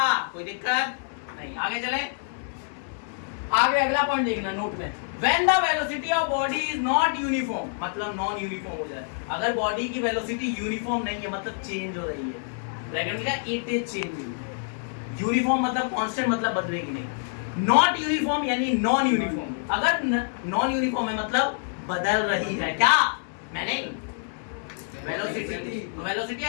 कोई दिक्कत नहीं। आगे चले, आगे अगला पॉइंट देखना नोट में, when the velocity of body is not uniform, मतलब नॉन यूनिफॉर्म हो जाए, अगर बॉडी की वेलोसिटी यूनिफॉर्म नहीं है मतलब चेंज हो रही है, ब्रैकेट का इट इज चेंजिंग, यूनिफॉर्म मतलब कांस्टेंट मतलब बदलेगी नहीं, नॉट यूनिफॉर्म यानी नॉन यूनिफॉर्म, अगर नॉन यूनिफॉर्म है मतलब बदल रही है, क्या मैंने वेलोसिटी, तो वेलोसिटी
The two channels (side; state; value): right; silent; digital silence